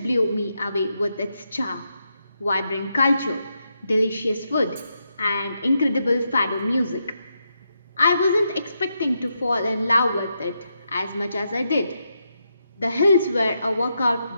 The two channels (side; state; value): both; inverted; correlation -0.83